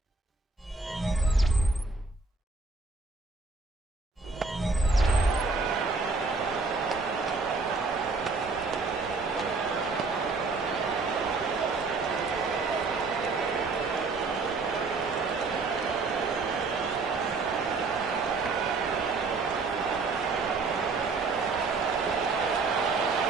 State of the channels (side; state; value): left; quieter; 4.0 dB